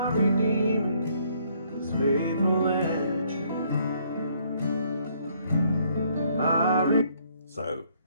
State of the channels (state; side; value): inverted; both; correlation -0.66